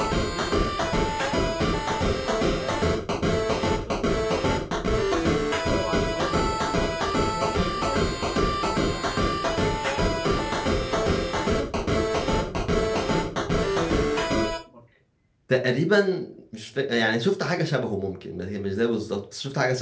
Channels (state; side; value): identical; both; correlation 1.00